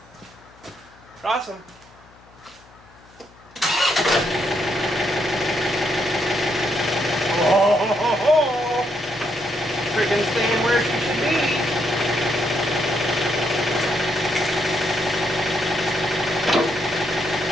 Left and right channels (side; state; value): left; noise; hum, 26 dB below the sound